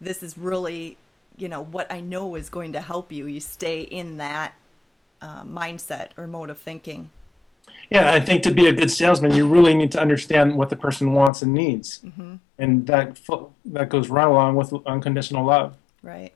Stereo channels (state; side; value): drops out; right; at 11.3 s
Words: is really, what I know is going to help you. You stay in that mindset or mode of thinking. Yeah, I think to be a good salesman, you really need to understand what the person wants and needs, and that goes right along with unconditional love. Right.